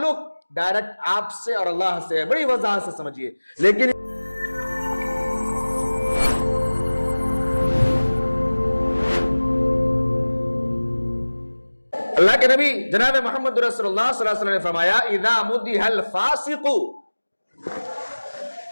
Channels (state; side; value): inverted; both; correlation -1.00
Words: ڈائریکٹ آپ سے اور اللہ سے ہے۔ بڑی وضاحت سے سمجھیے۔ لیکن اللہ کے نبی جناب محمد رسول اللہ صلی اللہ علیہ وسلم نے فرمایا اذا مدح الفاسق